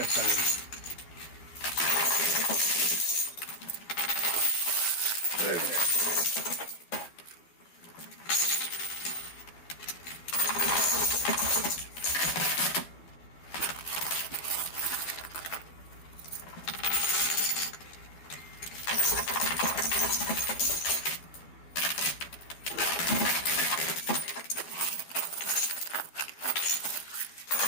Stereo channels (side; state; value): right; late; 12 ms